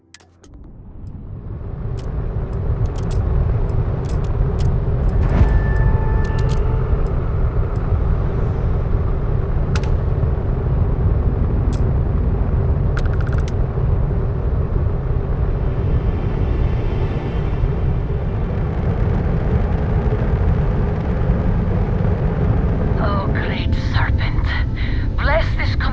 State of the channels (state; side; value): identical; both; correlation 1.00